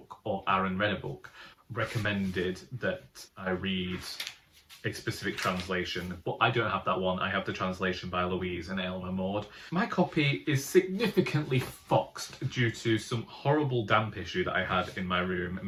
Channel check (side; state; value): both; identical; correlation 1.00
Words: or Aaron Read a Book recommended that I read a specific translation, but I don't have that one. I have the translation by Louise and Aylmer Maud. My copy is significantly foxed due to some horrible damp issue that I had in my room